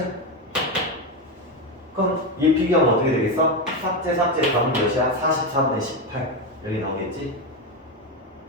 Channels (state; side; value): normal; both; correlation 0.12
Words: 그럼 얘 비교하면 어떻게 되겠어? 삭제 답은 몇이야? 44분의 18 여기 나오겠지?